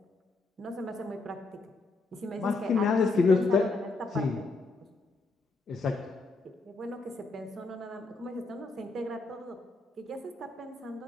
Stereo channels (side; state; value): right; quieter; 3.4 dB